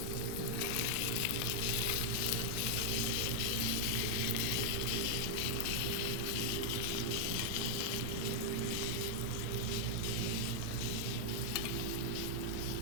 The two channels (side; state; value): both; different; correlation 0.00